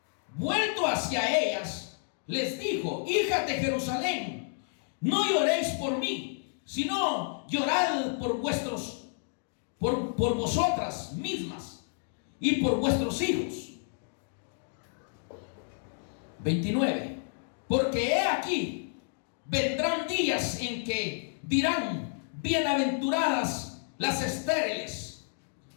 vuelto hacia ellas, les dijo: hijas de Jerusalén, no lloréis por mí, sino llorad por vosotras mismas y por vuestros hijos. 29. Porque he aquí, vendrán días en que dirán: bienaventuradas las estériles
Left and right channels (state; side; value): silent; right; digital silence